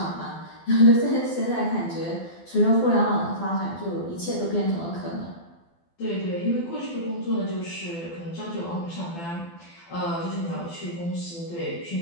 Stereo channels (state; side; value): late; right; 12 ms